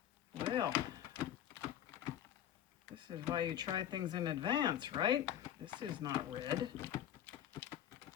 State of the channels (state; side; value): quieter; right; 11.0 dB